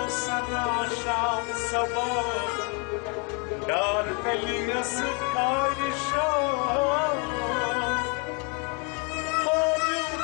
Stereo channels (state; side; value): quieter; right; 33.6 dB